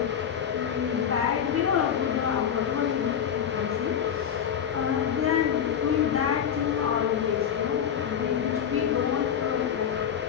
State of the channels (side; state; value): right; quieter; 8.5 dB